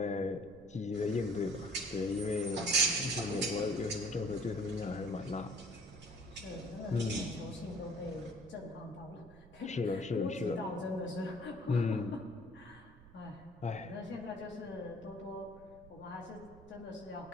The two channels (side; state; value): right; noise; rumble, 20 dB below the sound